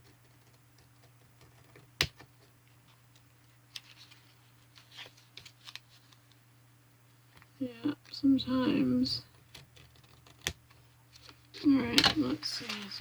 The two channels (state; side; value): identical; both; correlation 1.00